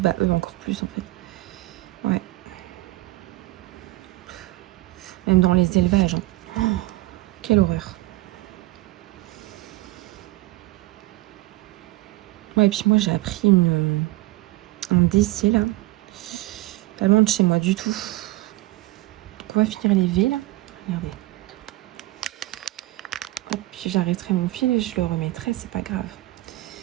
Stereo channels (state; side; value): quieter; left; 18.9 dB